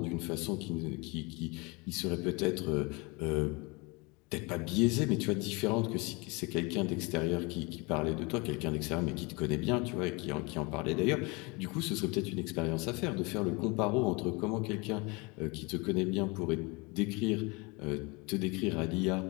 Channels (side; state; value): right; quieter; 27.6 dB